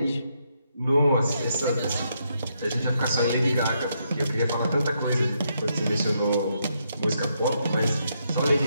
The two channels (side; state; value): both; inverted; correlation -0.78